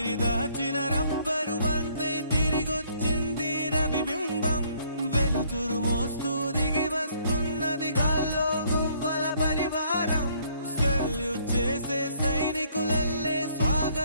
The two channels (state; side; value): inverted; both; correlation -0.64